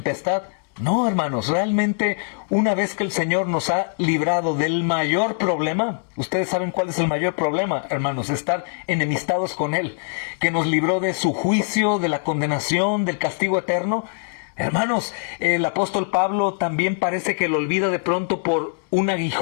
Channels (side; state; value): right; silent; digital silence